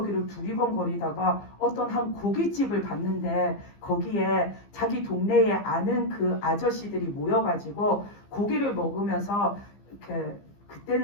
두리번거리다가 어떤 한 고깃집을 봤는데 거기에 자기 동네에 아는 그 아저씨들이 모여가지고 고기를 먹으면서 이렇게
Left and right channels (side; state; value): right; late; 15 ms